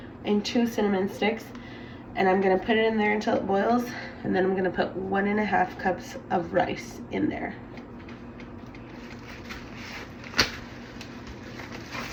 and 2 cinnamon sticks, and I'm gonna put it in there until it boils, and then I'm gonna put 1.5 cups of rice in there.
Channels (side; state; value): both; identical; correlation 1.00